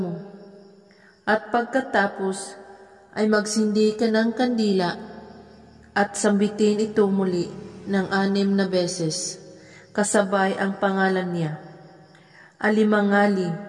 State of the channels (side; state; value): both; identical; correlation 1.00